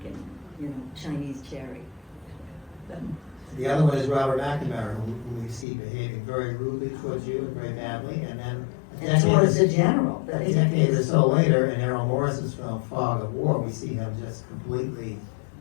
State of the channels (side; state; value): right; drops out; at 5.7 s